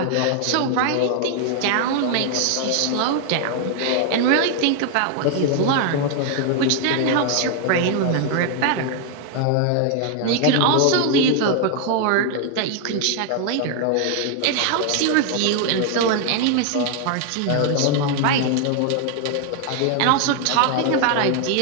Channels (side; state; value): both; different; correlation 0.00